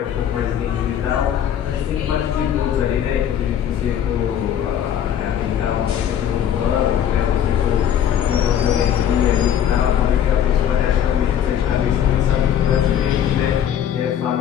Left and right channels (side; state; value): right; quieter; 9.7 dB